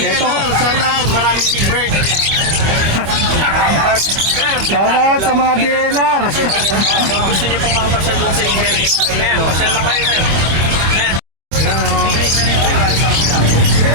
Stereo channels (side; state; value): left; late; 25 ms